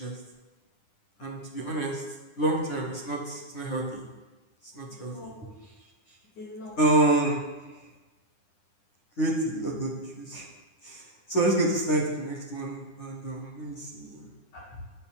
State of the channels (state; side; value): late; right; 9.8 ms